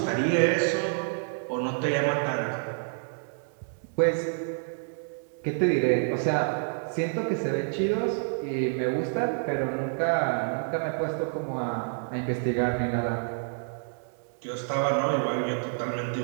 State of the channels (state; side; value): silent; left; digital silence